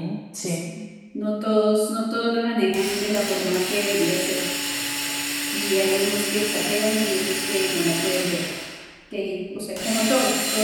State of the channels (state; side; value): identical; both; correlation 1.00